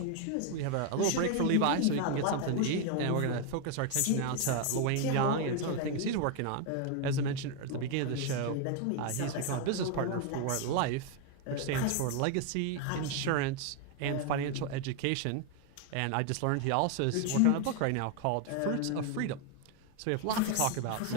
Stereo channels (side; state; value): both; different; correlation 0.01